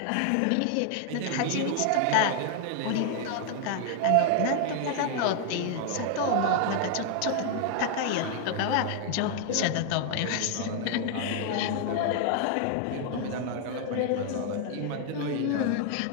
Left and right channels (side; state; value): both; different; correlation 0.00